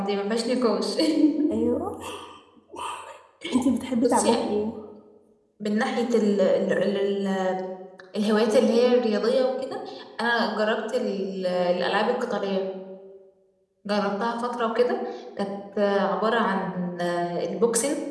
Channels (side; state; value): both; identical; correlation 1.00